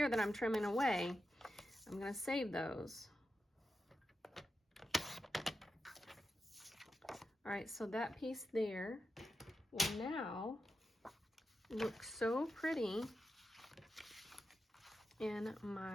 that I'm trimming away, I'm going to save those. All right, so that piece there will now look so pretty in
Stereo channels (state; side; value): normal; both; correlation 0.89